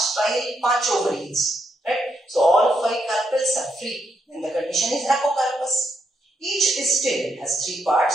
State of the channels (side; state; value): both; normal; correlation 0.78